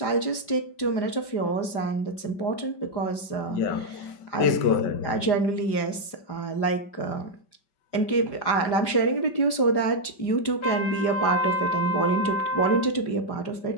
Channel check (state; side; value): late; right; 4.9 ms